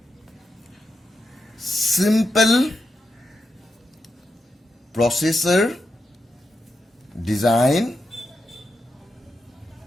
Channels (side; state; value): both; normal; correlation 0.86